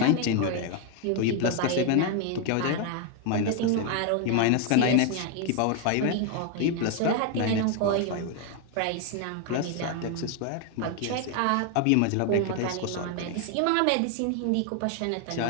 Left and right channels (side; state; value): both; different; correlation 0.01